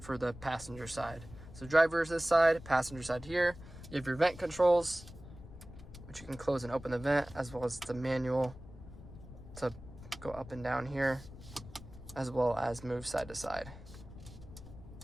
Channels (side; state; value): left; noise; rumble, 16 dB below the sound